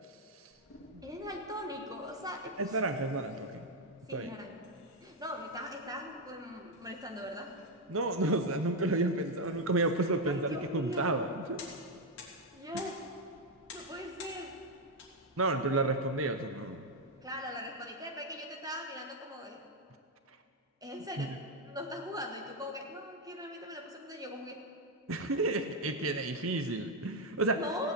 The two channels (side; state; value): both; normal; correlation 0.04